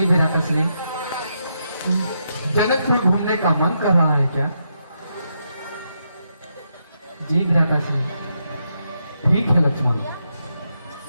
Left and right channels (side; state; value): both; inverted; correlation -0.81